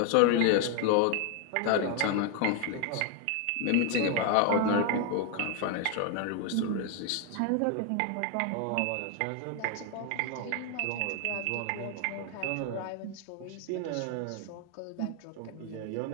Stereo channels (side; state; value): both; different; correlation 0.00